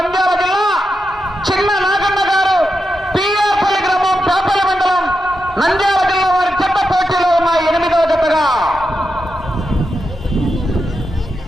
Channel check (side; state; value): both; normal; correlation 0.87